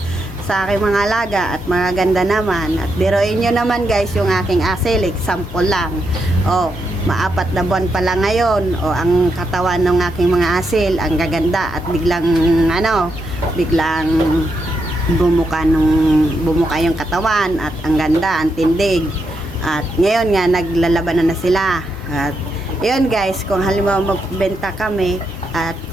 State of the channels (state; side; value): normal; both; correlation 0.82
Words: sa aking mga alaga at mga ganda naman. At biruin nyo naman guys yung aking asil, example lang. Maapat na buwan pa lang ngayon, ang katawan ng aking mga asil ang gaganda at biglang bumuka yung katawan at ang ganda, ang tindig. At ngayon nga naglalaban na sila. At yun guys, kung halimbawa magbenta kami at